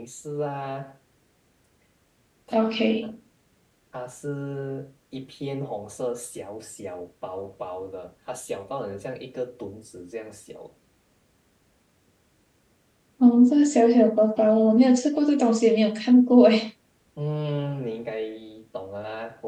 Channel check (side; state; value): both; identical; correlation 1.00